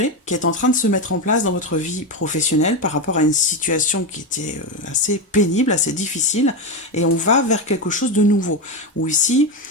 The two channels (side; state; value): both; normal; correlation 0.13